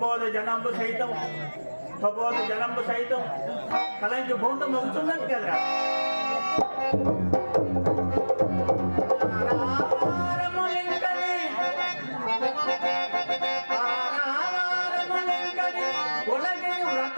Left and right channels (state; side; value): inverted; both; correlation -1.00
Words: జనంబు సైతం కలంకి భూతం అవుతున్నది కదరా.